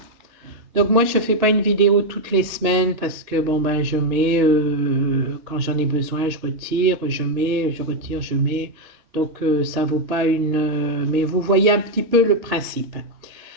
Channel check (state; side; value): late; left; 2.9 ms